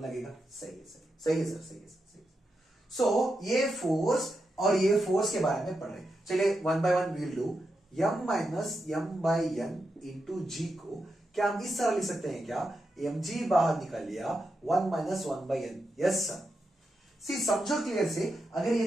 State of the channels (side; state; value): both; normal; correlation 0.86